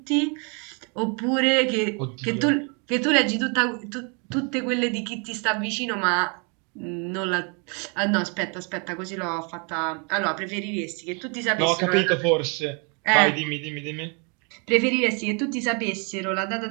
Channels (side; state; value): left; quieter; 35.2 dB